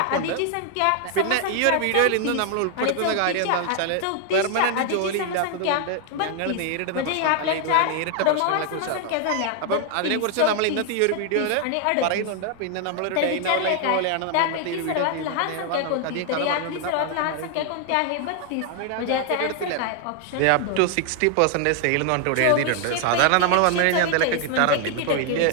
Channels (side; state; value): both; different; correlation 0.00